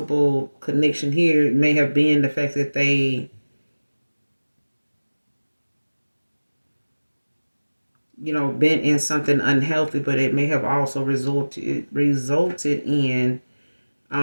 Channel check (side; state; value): both; inverted; correlation -1.00